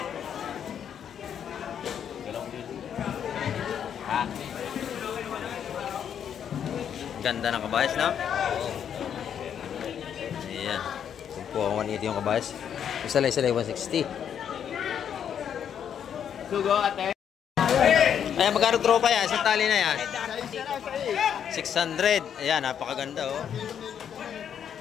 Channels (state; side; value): quieter; right; 8.6 dB